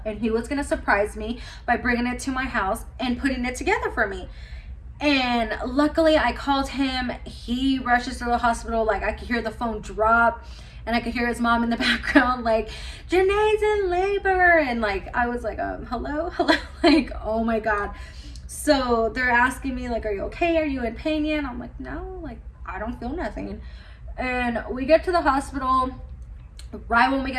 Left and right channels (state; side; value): identical; both; correlation 1.00